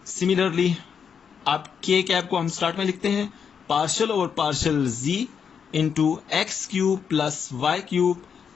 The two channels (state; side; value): quieter; right; 7.0 dB